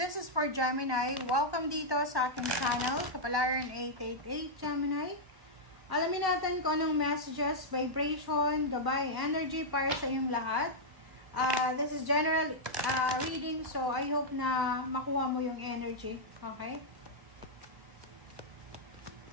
is for Gemini. Welcome dito sa aking channel, Kapalaran 888 Gemini. Alamin natin kung anong messages, vibration, gabay, energy para sa iyong lahat. This is general reading, so I hope na makuha mo yung energy. Okay?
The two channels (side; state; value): left; late; 1.1 ms